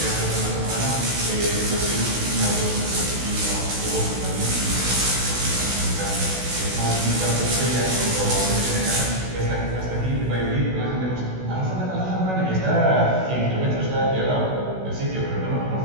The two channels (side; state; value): left; late; 16 ms